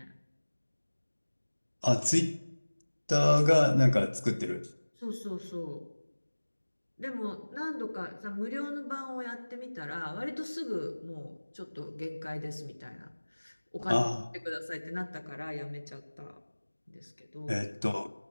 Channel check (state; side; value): inverted; both; correlation -1.00